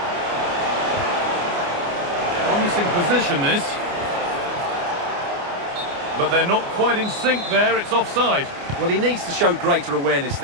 Promising position this. But they're not quite in sync there, it's offside. Well, he needs to show greater awareness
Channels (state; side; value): late; left; 29 ms